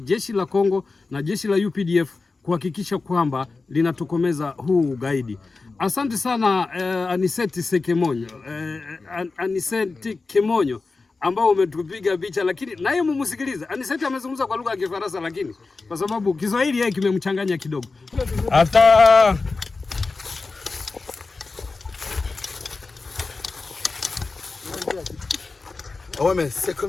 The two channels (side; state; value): right; quieter; 3.9 dB